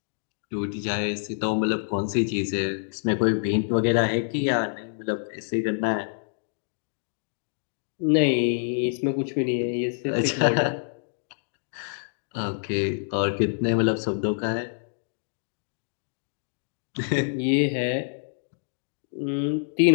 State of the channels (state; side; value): silent; right; digital silence